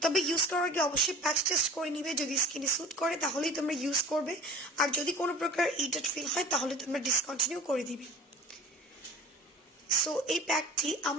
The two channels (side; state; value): both; normal; correlation 0.41